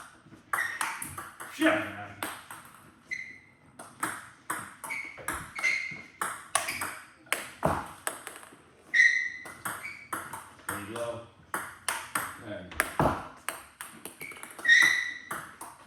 Shit! There you go. There you go.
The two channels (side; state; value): both; identical; correlation 1.00